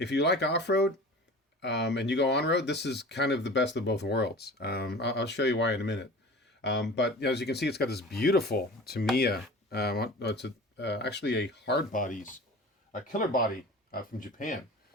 you like off-road and you go on-road, this is kind of the best of both worlds. I'll show you why in a minute. But as you can see, it's got this beautiful Tamiya. It's actually a hard bodies, a Killerbody from Japan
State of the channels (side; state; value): both; normal; correlation 0.39